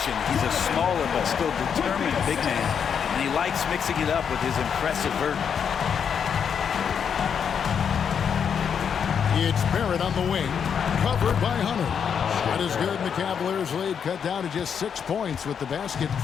He's a smaller but still determined big man. And he likes mixing it up with his impressive vert. It's Barrett on the wing, covered by Hunter. Shot is good, and the Cavaliers lead cut down to just 6 points with the basket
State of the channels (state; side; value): quieter; right; 7.3 dB